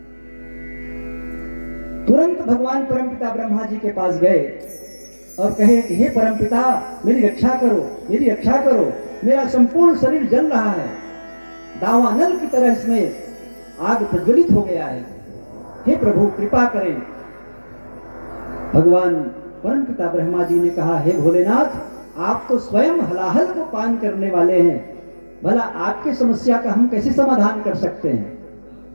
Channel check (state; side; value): inverted; both; correlation -1.00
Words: तुरंत भगवान परमपिता ब्रह्मा जी के पास गए और कहे कि हे परमपिता, मेरी रक्षा करो, मेरी रक्षा करो, मेरा संपूर्ण शरीर जल रहा है, दावानल की तरह इसमें आग प्रज्वलित हो गया है। हे प्रभु कृपा करें। भगवान परमपिता ब्रह्मा जी ने कहा, हे भोलेनाथ, आप तो स्वयं हलाहल को पान करने वाले हैं, भला आपकी समस्या का हम कैसे समाधान कर सकते हैं।